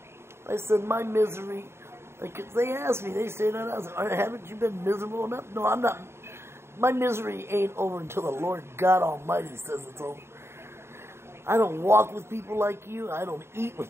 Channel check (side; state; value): left; late; 0.12 ms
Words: I said, my misery, like they asked me, they said, haven't you been miserable enough? No, I'm not. My misery ain't over until the Lord God Almighty says it's over. I don't walk with people like you. I don't eat